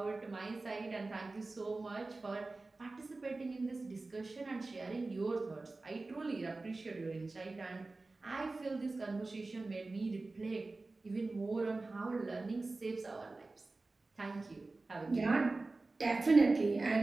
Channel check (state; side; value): quieter; left; 3.4 dB